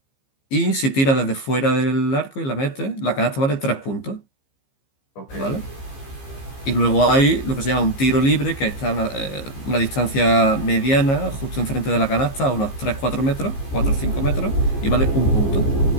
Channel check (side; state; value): right; late; 15 ms